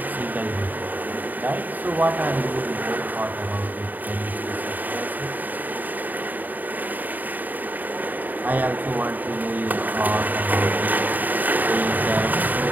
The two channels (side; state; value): left; late; 0.085 ms